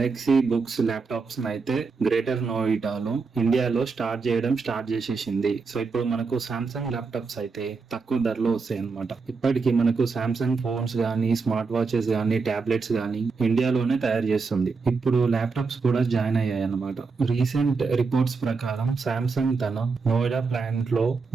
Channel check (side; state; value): left; quieter; 4.6 dB